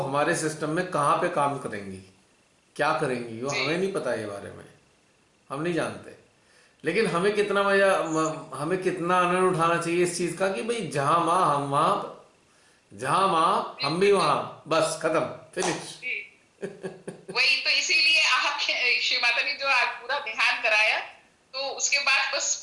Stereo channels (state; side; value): identical; both; correlation 1.00